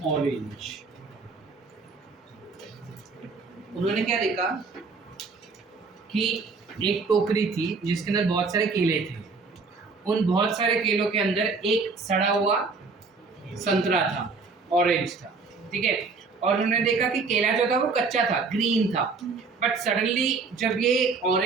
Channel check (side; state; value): left; quieter; 4.5 dB